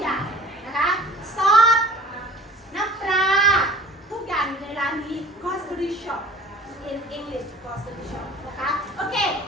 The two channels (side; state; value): both; normal; correlation 0.45